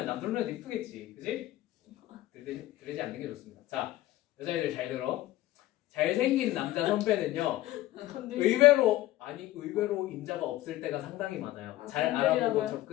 남들 눈에도 이쁘겠지, 그지? 들이대지 않는 게 좋습니다. 자, 여자애들 잘 들어. 잘생긴 남자 선배는요, 의외로 임자가 없을 때가 상당히 많아요. 아, 잘 알아보고 건드리라고요?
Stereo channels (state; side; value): quieter; right; 15.7 dB